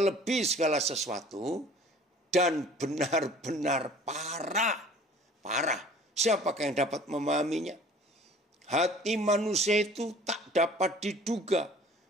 segala sesuatu dan benar-benar parah. Parah. Siapakah yang dapat memahaminya? Hati manusia itu tak dapat diduga,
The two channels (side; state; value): both; normal; correlation 0.49